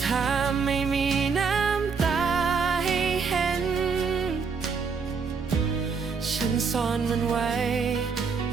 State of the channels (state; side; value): quieter; left; 5.4 dB